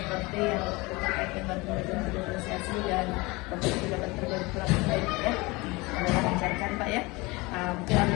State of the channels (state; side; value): quieter; right; 24.0 dB